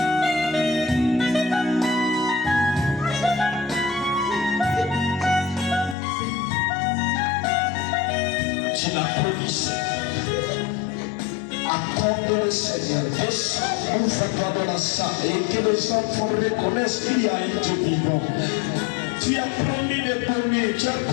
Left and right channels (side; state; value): right; drops out; at 6.0 s